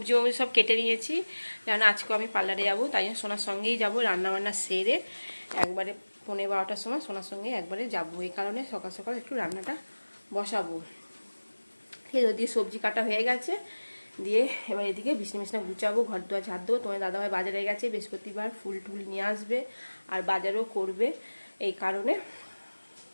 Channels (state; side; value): inverted; both; correlation -1.00